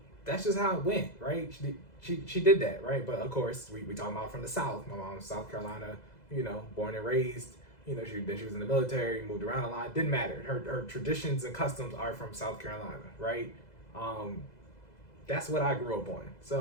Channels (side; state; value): right; late; 2.0 ms